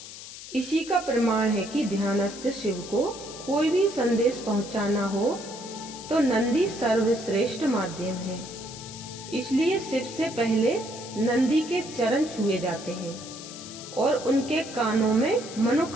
इसी का प्रमाण है कि ध्यानस्थ शिव को कोई भी संदेश पहुंचाना हो तो नंदी सर्वश्रेष्ठ माध्यम है। इसलिए शिव से पहले नंदी के चरण छुए जाते हैं और उनके कानों में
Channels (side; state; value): left; noise; hiss, 13 dB below the sound